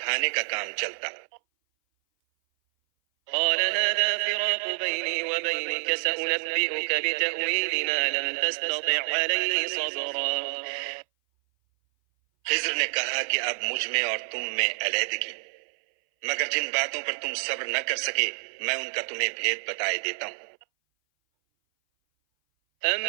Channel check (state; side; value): silent; left; 58 dB below the other